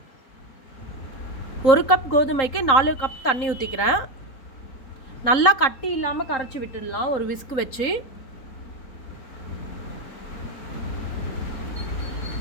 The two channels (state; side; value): late; right; 3.8 ms